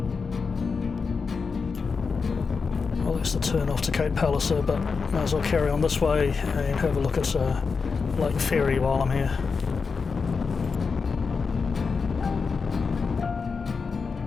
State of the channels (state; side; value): quieter; right; 5.1 dB